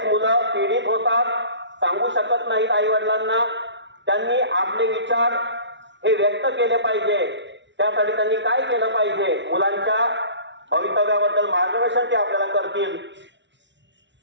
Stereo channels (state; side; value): late; left; 0.52 ms